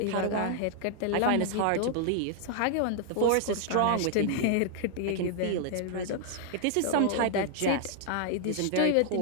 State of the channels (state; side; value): different; both; correlation 0.00